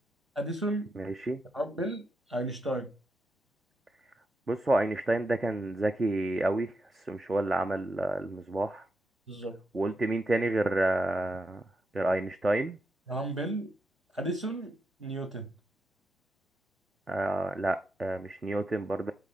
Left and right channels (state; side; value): normal; both; correlation 0.85